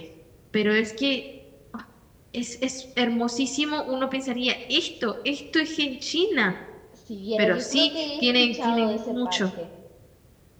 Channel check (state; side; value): identical; both; correlation 1.00